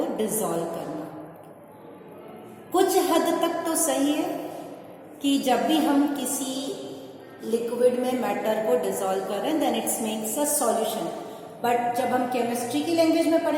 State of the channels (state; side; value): identical; both; correlation 1.00